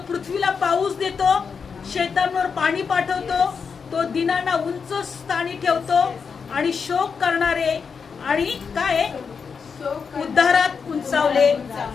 पृथ्वीला पाऊस देतो, शेतांवर पाणी पाठवतो, तो दिनांना उंच स्थानी ठेवतो आणि शोक करणारे आणि काय उद्धारात उंचावले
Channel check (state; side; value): quieter; right; 5.8 dB